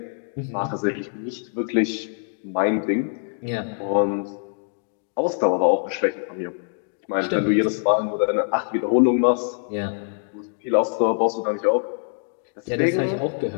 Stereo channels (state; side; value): silent; right; digital silence